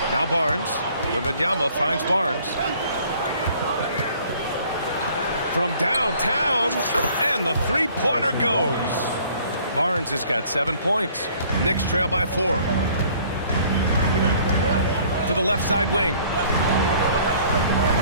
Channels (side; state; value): both; inverted; correlation -0.56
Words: Now Barnes. Wembanyama finds Barnes. From downtown, and the three-pointer goes. Barnes has got 7 points. Knicks trail by 4. To the left side wing.